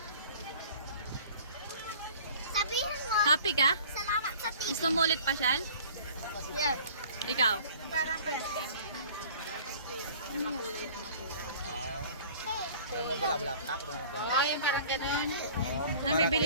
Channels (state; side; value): inverted; both; correlation -0.48